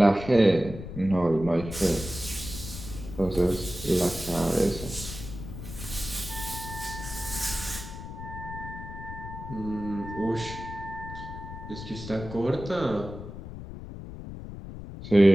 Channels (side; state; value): left; noise; rumble, 10 dB below the sound